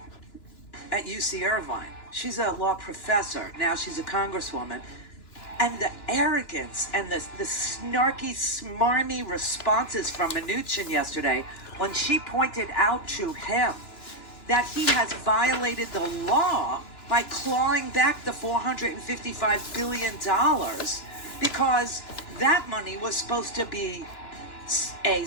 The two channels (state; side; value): late; right; 2.9 ms